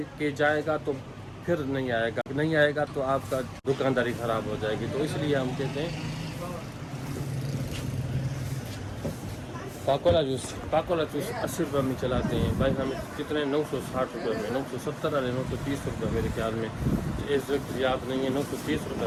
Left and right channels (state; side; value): identical; both; correlation 1.00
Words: के जाएगा तो फिर नहीं आएगा तो आपका दुकानदारी ख़राब हो जाएगी। तो इसलिए हम कहते हैं पाकोला जूस 80 रुपये में चलाते हैं भाई। हमें कितने 960 रुपये में, 970 वाले 930 रुपये मेरे ख्याल में, इस वक्त याद नहीं है, 930